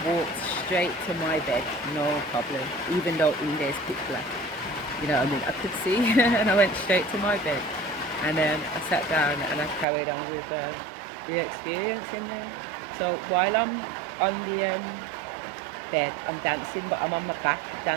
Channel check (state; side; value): drops out; left; at 9.9 s